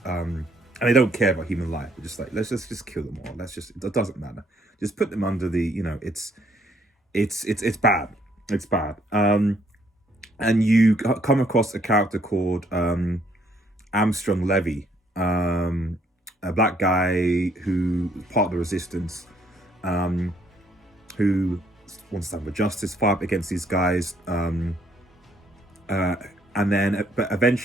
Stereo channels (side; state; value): both; normal; correlation 0.67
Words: and they don't care about human life. They're just like, let's just kill them all. It doesn't matter. Just put them under the, you know, it's bad. It's bad. And you come across a character called angstrom Levy, a black guy who part of the resistance, who wants to have a justice fight against these guys. And then, but